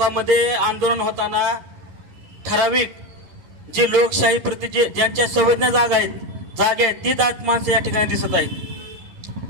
आंदोलन होताना ठराविक जे लोकशाही प्रति ज्यांच्या संवेदना जागा आहेत ती जात माणसं या ठिकाणी दिसत आहेत।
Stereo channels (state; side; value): late; left; 11 ms